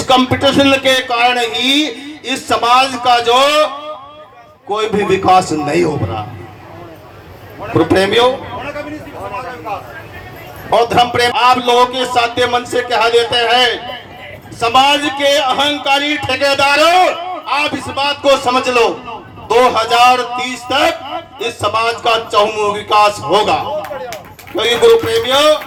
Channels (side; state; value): both; identical; correlation 1.00